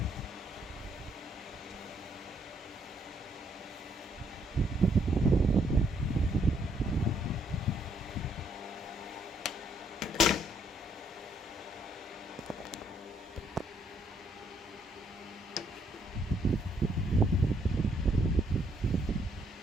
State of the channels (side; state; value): both; normal; correlation 0.70